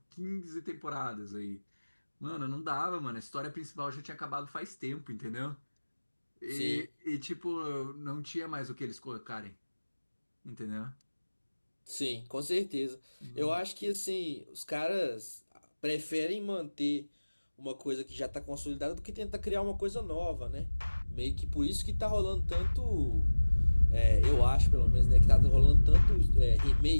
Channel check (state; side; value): inverted; both; correlation -1.00